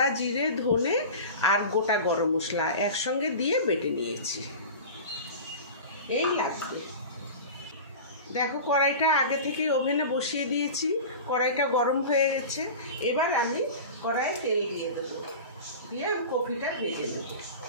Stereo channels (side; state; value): both; inverted; correlation -0.32